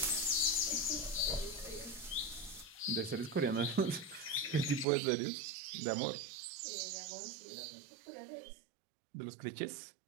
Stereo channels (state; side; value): drops out; left; at 4.9 s